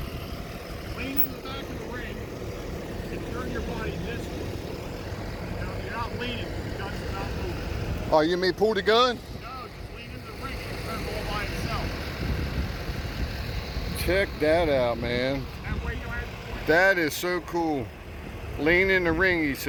Lean in the back of the ring and turn your body this way. You're not leaning, the gun's not moving. Oh, you mean pull the gun? No, just lean in the ring and turn all by itself. Check that out, man. That way you don't have to point. That is so cool. Lean in the ring, he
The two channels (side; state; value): both; identical; correlation 1.00